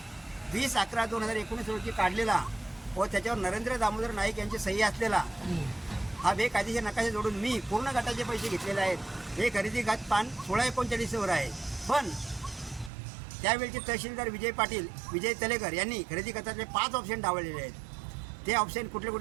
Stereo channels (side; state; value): left; drops out; at 12.9 s